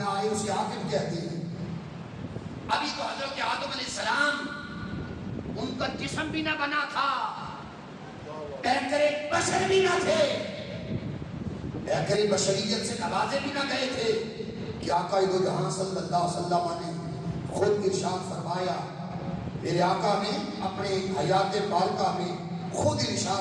آئے اسے عاقب کہتے ہیں۔ ابھی تو حضرت آدم علیہ السلام ان کا جسم بھی نہ بنا تھا، پیکرے بشر بھی نہ تھے، پیکرے بشریت سے نوازے بھی نہ گئے تھے کہ آقا دو جہاں صلی اللہ علیہ وسلم نے خود ارشاد فرمایا، میرے آقا نے اپنے حیات پالکہ میں خود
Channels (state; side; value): identical; both; correlation 1.00